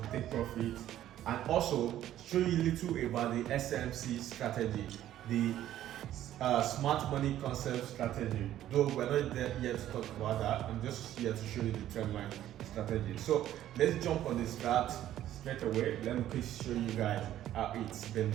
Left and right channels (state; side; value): quieter; left; 12.5 dB